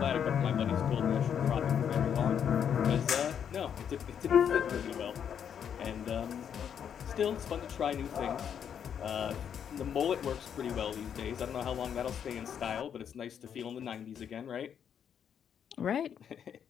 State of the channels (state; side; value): quieter; right; 8.3 dB